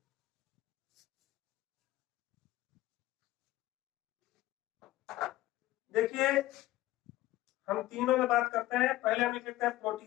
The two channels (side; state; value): right; quieter; 16.6 dB